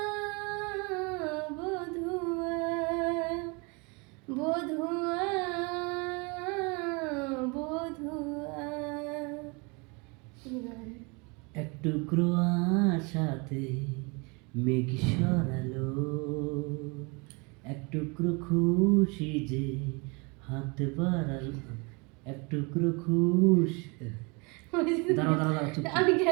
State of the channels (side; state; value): left; quieter; 30.1 dB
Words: বধুয়া বধুয়া বধুয়া। এক টুকরো আশাতে মেঘ সরালো, এক টুকরো খুশি যে হাত বাড়ালো, এক টুকরো খুশি দাঁড়াও দাঁড়াও দাঁড়াও, চুপ আমি